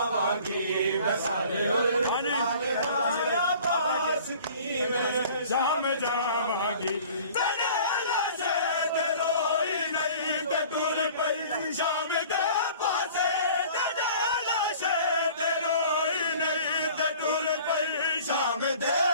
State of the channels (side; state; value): both; inverted; correlation -0.47